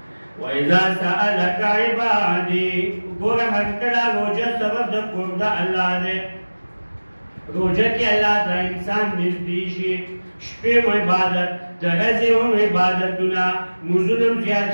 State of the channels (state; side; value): inverted; both; correlation -1.00